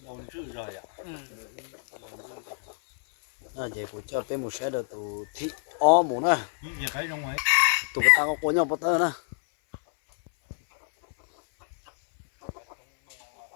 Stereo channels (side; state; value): right; silent; 59 dB below the other